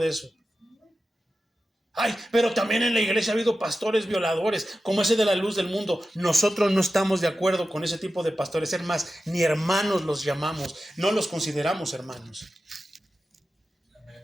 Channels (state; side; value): normal; both; correlation 0.93